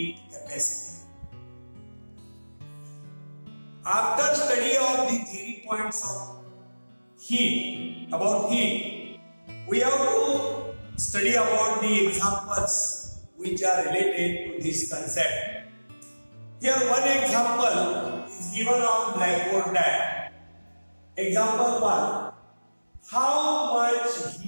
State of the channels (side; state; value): both; inverted; correlation -1.00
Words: capacity. After study of the theory points of heat, we have to study about the examples which are related to this concept. Here one example is given on blackboard diagram. Example 1. How much